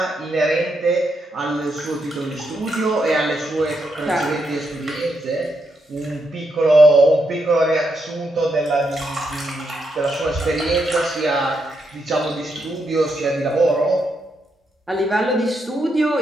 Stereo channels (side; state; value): both; normal; correlation 0.80